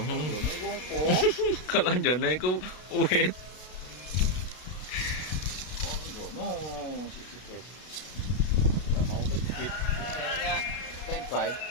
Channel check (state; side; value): late; right; 33 ms